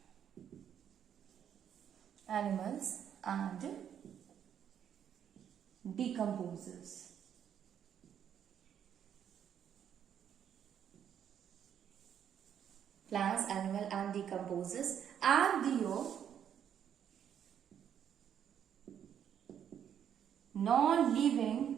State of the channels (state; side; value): quieter; left; 9.0 dB